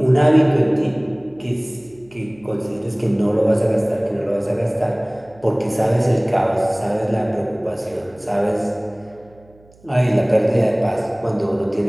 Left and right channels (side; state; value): right; noise; hum, 28 dB below the sound